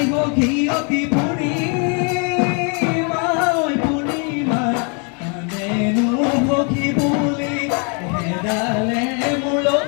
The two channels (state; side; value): quieter; right; 37.0 dB